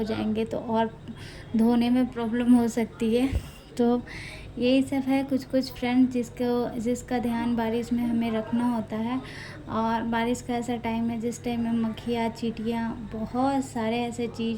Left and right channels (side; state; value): both; identical; correlation 1.00